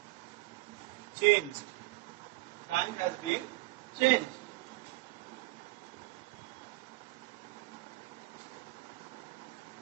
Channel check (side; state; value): left; quieter; 21.2 dB